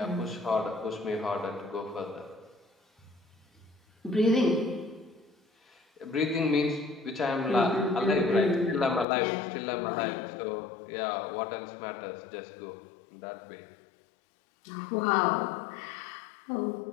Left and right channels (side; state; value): right; drops out; at 9.1 s